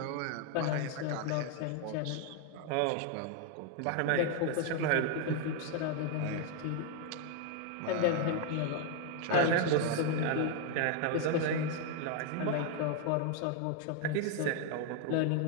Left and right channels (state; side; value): different; both; correlation 0.00